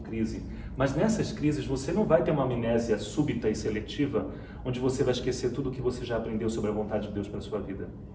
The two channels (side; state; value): both; identical; correlation 1.00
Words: Mas nessas crises, você não vai ter uma amnésia súbita e seletiva, onde você vai esquecer tudo o que você já aprendeu sobre a vontade de Deus para a sua vida.